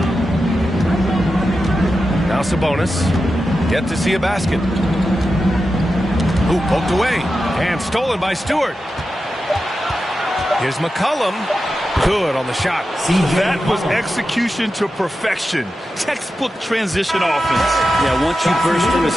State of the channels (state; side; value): normal; both; correlation 0.91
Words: Now Sabonis. Yet to see a basket. Ooh, poked away. And stolen by Stewart. Here's McCollum. Good on the shot. That was execution to perfection. Textbook transition offense. Yeah, once you burst through a